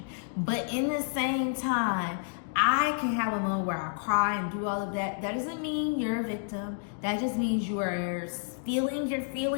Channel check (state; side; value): silent; right; digital silence